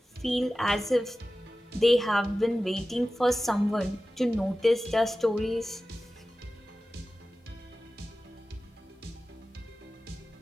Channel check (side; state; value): both; normal; correlation 0.95